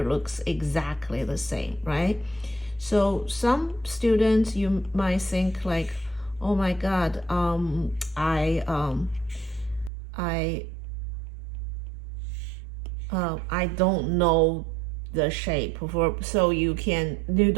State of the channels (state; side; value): drops out; left; at 9.9 s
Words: looks exactly the same, right? So some students, you might think like, oh my God, I don't know the shape for, so you